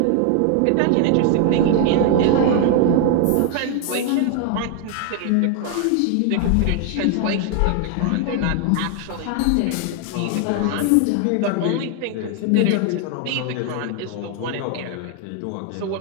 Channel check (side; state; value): both; different; correlation 0.00